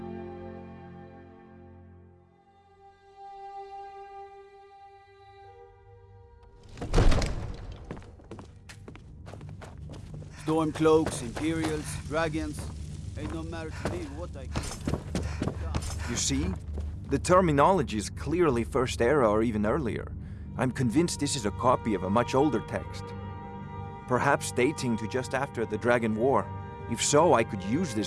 Stormcloaks, Imperials, dragons. Ain't no matter to me what I can. You see? The terminology is clearly First Era or even earlier. I'm convinced this is a copy of a much older text. Perhaps dating to just after the Dragon War. If so, I could use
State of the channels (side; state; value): both; identical; correlation 1.00